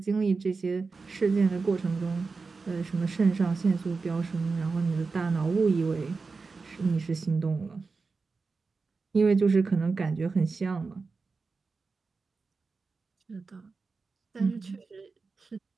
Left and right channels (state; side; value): quieter; left; 4.3 dB